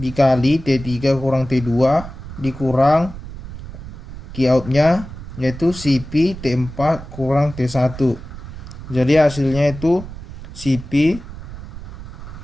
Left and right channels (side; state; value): right; noise; rumble, 12 dB below the sound